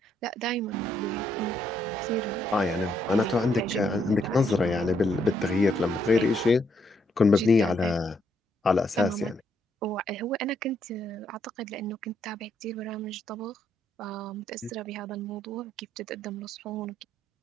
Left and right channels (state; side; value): normal; both; correlation 0.74